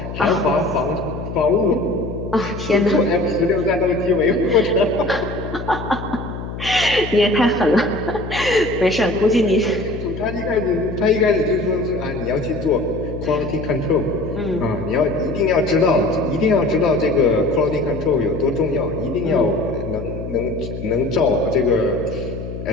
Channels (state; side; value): noise; left; hum, 8 dB below the sound